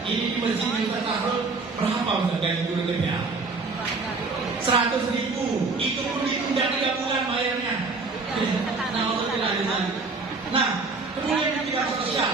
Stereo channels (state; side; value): quieter; left; 3.9 dB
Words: Ini di masjid kita taruh berapa untuk gaji guru TPA? 100.000. Itu pun ditunda 3 bulan bayarnya. Nah, kemudian di bidang